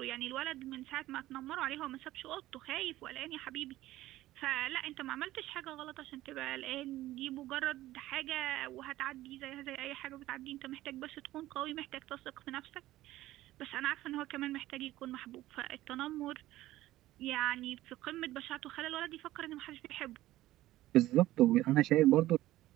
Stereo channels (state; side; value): quieter; left; 15.7 dB